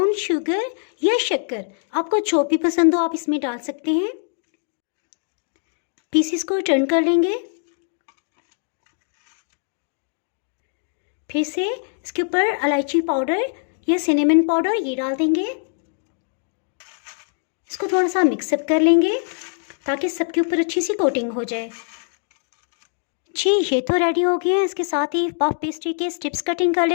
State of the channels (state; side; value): silent; right; digital silence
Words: शुगर या शक्कर, आपको जो भी पसंद हो आप इसमें डाल सकते हैं। पीसेस को टर्न कर लेंगे। फिर से इसके ऊपर इलायची पाउडर या सिनेमन पाउडर ये डाल देंगे। इसको थोड़ा सा मिक्सअप कर लेंगे ताकि सबके ऊपर अच्छी सी कोटिंग हो जाए। जी, ये तो रेडी हो गया है। इसके साथ ही पफ पेस्ट्री के स्ट्रिप्स कटिंग कर